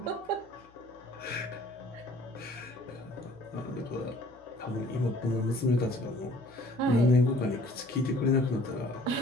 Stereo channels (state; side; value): noise; left; hum, 29 dB below the sound